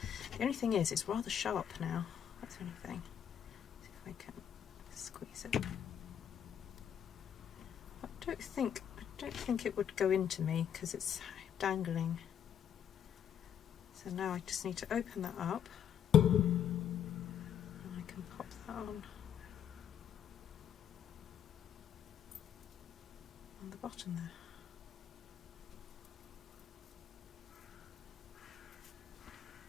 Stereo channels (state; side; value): quieter; right; 9.1 dB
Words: The only thing is it's rather sharp now. That's the only thing. See if I can squeeze it. I don't think it would go into me because it's dangling. So now I just need to open that up and I can pop that on the bottom there.